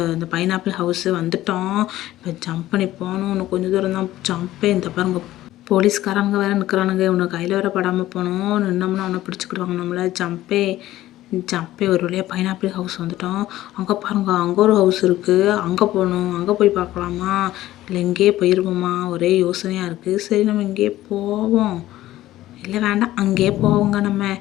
அந்த பைனாப்பிள் ஹவுஸு வந்துட்டோம். இப்போ ஜம்ப் பண்ணி போகணும். இன்னும் கொஞ்சம் தூரம் தான். இந்த பாருங்க, போலீஸ்காரங்க வேறு நிற்கிறானுங்க. இவனை கையில் வேறு படாமல் போகணும். நின்னோம்னா அவனை பிடிச்சிக்கிடுவாங்க நம்மளை. ஜம்பே ஒரு வழியாக பைனாப்பிள் ஹவுஸ் வந்துட்டோம். அங்கே பாருங்க, அங்கே ஒரு ஹவுஸ் இருக்குது. அங்கே போகணும். அங்கே போய் பார்க்கலாமா, இல்லை இங்கேயே போயிடுவோமா? ஒரே யோசனையாக இருக்குது. சரி, நம்ம இங்கேயே போவோம். இல்லை வேண்டாம், அங்கேயே போவோங்க. நம்ம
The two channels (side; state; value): right; quieter; 15.0 dB